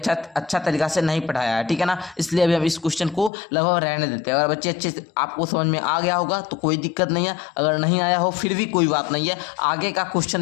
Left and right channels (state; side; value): drops out; right; at 3.3 s